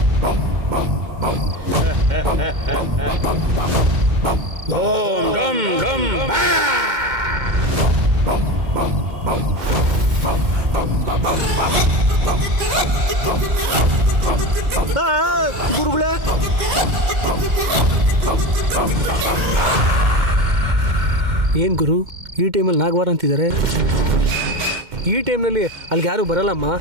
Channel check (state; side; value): late; left; 2.1 ms